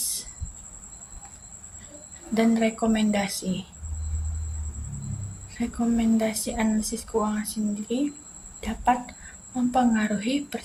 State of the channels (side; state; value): both; identical; correlation 1.00